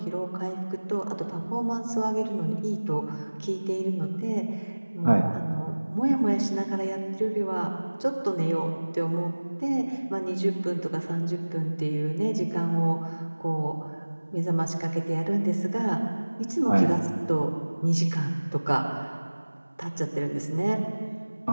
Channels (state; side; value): inverted; both; correlation -1.00